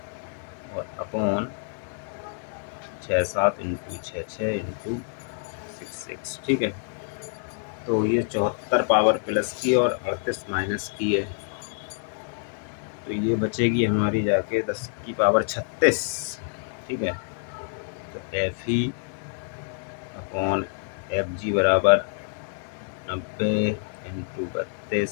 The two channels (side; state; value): right; silent; digital silence